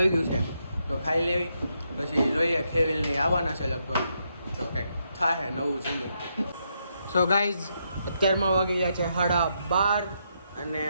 ગયું છે. તો ખાઈ લેવી, પછી જોઈએ. ખેવીલને આવવાના છે લગભગ, તો કંઈક થાય નવું જમવું. સો ગાઈઝ, અત્યારમાં વાગી ગયા છે 12:30 અને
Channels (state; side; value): inverted; both; correlation -0.79